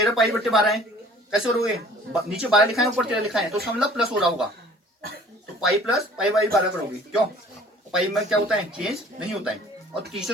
पाई बट्टे 12 है, कैसे करोगे, नीचे 12 लिखा है ऊपर 13 लिखा है, तो इसका मतलब प्लस हो रहा होगा, तो पाई प्लस पाई बाई 12 करोगे, क्यों पाई में क्या होता है चेंज नहीं होता है, और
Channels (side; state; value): both; normal; correlation 0.51